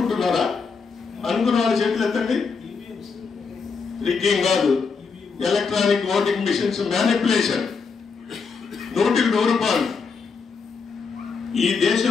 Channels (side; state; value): right; quieter; 5.2 dB